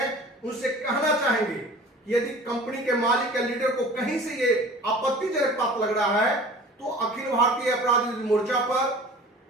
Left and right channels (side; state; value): both; normal; correlation 0.43